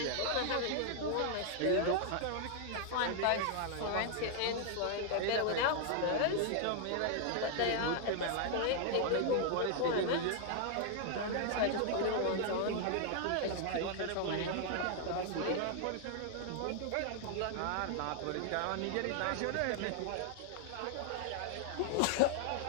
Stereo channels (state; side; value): different; both; correlation 0.00